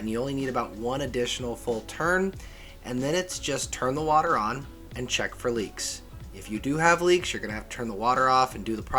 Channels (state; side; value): identical; both; correlation 1.00